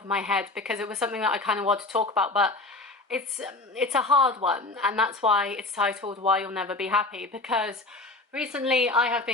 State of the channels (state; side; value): quieter; right; 3.1 dB